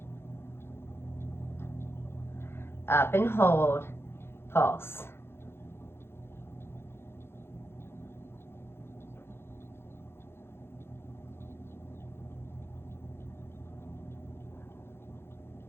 up and hold, pulse.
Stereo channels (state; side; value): late; right; 0.12 ms